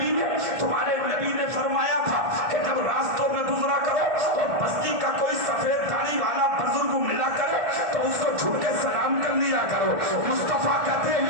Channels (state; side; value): late; left; 1.5 ms